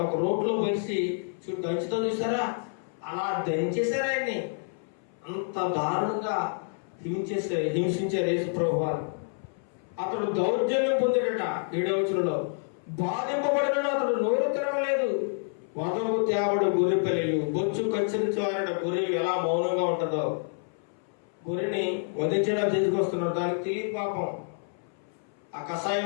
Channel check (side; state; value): right; silent; 59 dB below the other